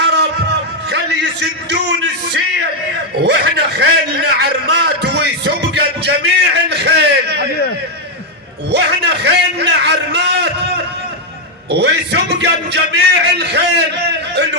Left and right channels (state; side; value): normal; both; correlation 0.00